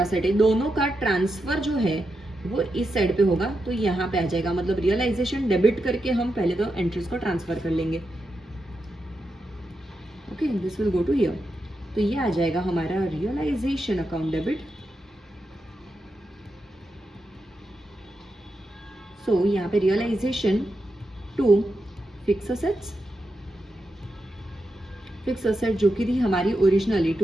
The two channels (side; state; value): both; normal; correlation 0.87